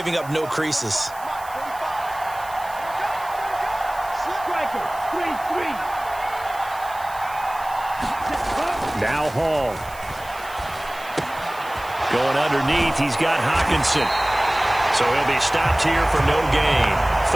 up no creases. Striker, 3-3. Now Hall. Going underneath, he's got Hockenson. So he'll be stopped here for no gain.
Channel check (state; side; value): noise; right; hiss, 19 dB below the sound